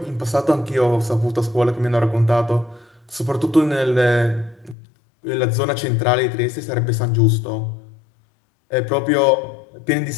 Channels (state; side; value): drops out; right; at 4.8 s